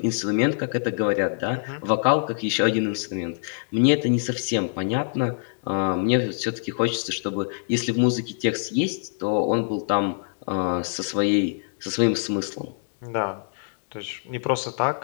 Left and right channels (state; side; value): silent; right; 62 dB below the other